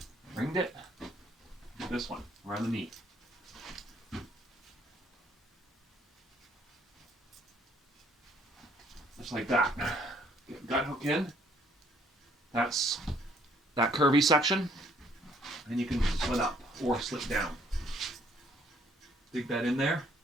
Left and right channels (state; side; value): normal; both; correlation 0.63